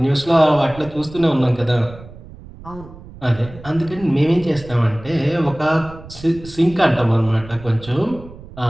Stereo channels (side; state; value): right; noise; rumble, 17 dB below the sound